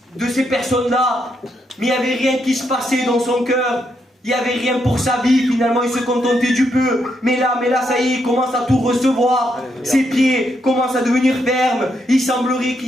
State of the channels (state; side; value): normal; both; correlation 0.79